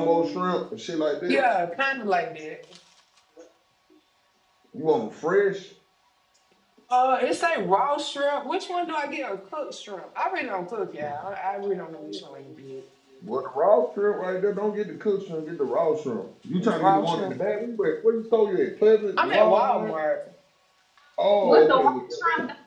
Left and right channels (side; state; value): both; identical; correlation 1.00